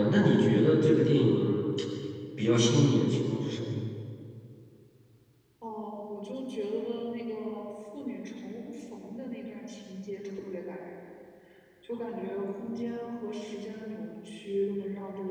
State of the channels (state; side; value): identical; both; correlation 1.00